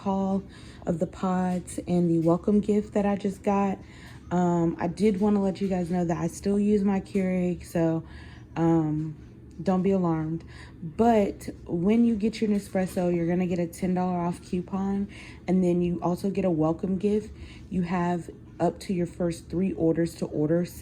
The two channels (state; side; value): identical; both; correlation 1.00